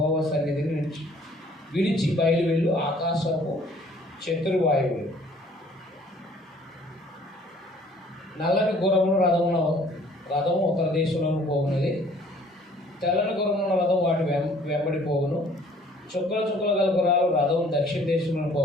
సన్నిధిని విడిచి బయలు వెళ్ళు ఆకాశపు చతుర్వాయువులు. నల్లని గుర్రముల రథము ఉత్తర దేశంలోకి పోగున్నది. తెల్లని గుర్రముల రథం వాటి వెంబడి పోగును. చుక్కల గల గుర్రాలు రథం దక్షిణ దేశంలో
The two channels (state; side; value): normal; both; correlation 0.56